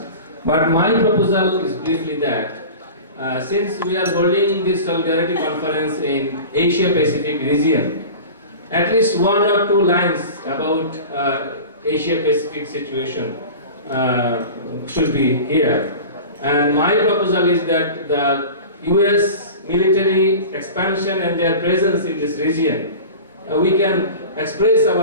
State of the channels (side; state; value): both; inverted; correlation -0.35